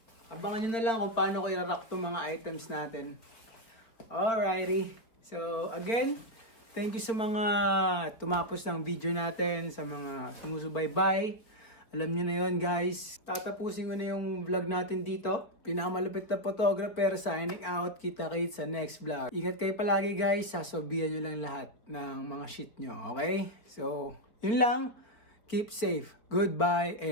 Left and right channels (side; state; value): right; late; 4.2 ms